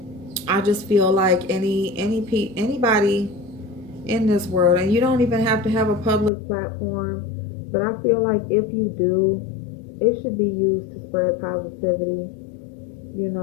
I just feel like anybody in this world, and you don't even have to have a public platform, but I feel like if you do, it should be used to spread positivity. You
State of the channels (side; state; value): right; drops out; at 6.3 s